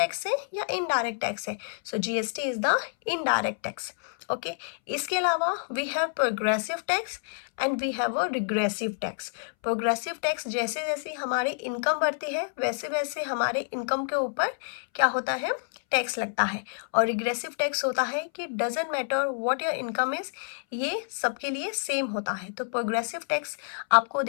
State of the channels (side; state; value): right; silent; 59 dB below the other